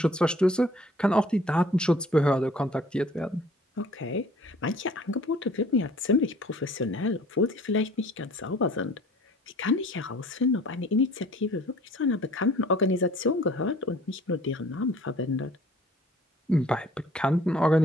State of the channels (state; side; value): normal; both; correlation 0.52